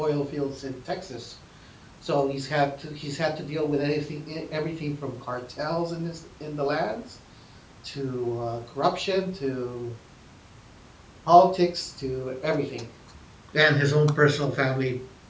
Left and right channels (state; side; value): identical; both; correlation 1.00